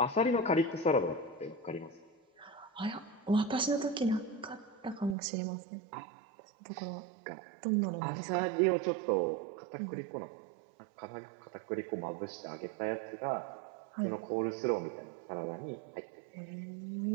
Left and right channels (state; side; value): drops out; left; at 5.2 s